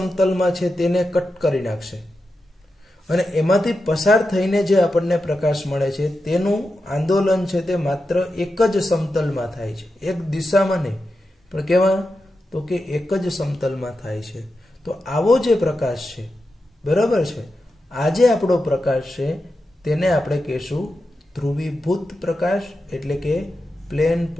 છે તેને કટ કરી નાખશે, અને એમાંથી પસાર થઈને જે આપણને પ્રકાશ મળે છે તેનું આંદોલન છે તે માત્ર એક જ સમતલમાં થાય છે, એક દિશામાં નહીં, પણ કેવા? તો કે એક જ સમતલમાં થાય છે. તો આવો જે પ્રકાશ છે, બરાબર છે, આ જે આપણો પ્રકાશ છે તેને આપણે કહેશું ધ્રુવીભૂત પ્રકાશ, એટલે કે પ્લેન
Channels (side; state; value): both; normal; correlation 0.89